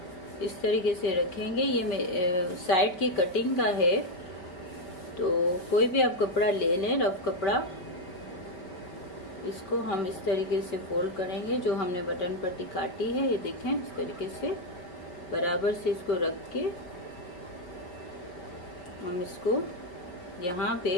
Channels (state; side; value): late; right; 5.6 ms